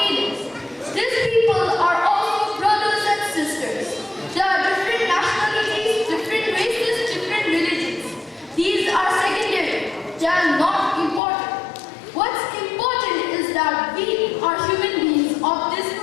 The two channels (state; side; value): drops out; right; at 11.2 s